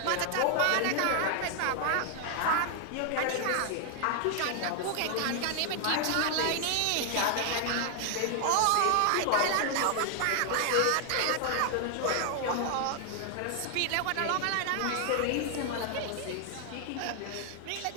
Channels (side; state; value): both; different; correlation 0.00